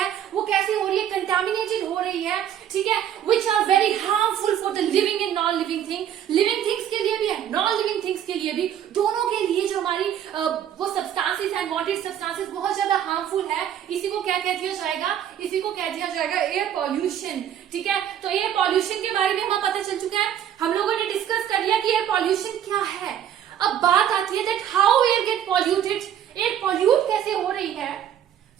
वो कैसी हो रही है, कंटामिनेटेड हो रही है, ठीक है, which are very harmful for the living and non living thing, living things के लिए भी है, नॉन लिविंग थिंग्स के लिए भी, दोनों के लिए जो हमारी वो सब्सटेंसेस है, अनवांटेड सब्सटेंसेस बहुत ज्यादा हार्मफुल है, इसी को क्या कह दिया जाएगा, इसी को कह दिया जाएगा एयर पॉल्यूशन। ठीक है, तो एयर पॉल्यूशन के बारे में हमें पता चल चुका है, हम लोगों ने डिस्कस कर लिया कि एयर पॉल्यूशन क्या है। अब बात आती है that how air get polluted, air pollute कैसे हो रही है।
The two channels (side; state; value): left; quieter; 10.0 dB